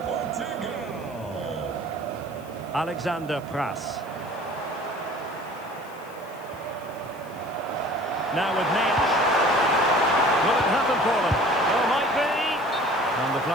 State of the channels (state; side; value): noise; left; hiss, 25 dB below the sound